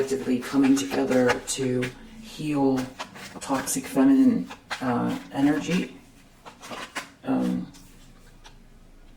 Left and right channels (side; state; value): both; identical; correlation 1.00